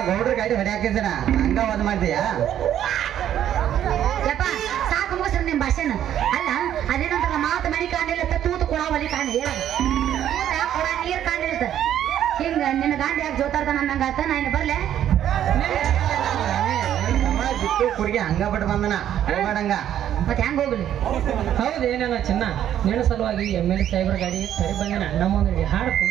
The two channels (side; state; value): left; quieter; 10.8 dB